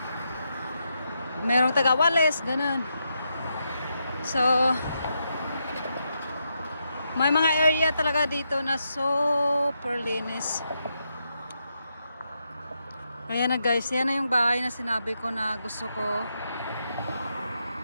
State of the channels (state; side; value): inverted; both; correlation -0.83